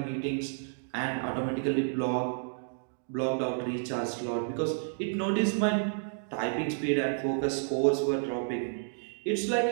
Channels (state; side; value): silent; left; digital silence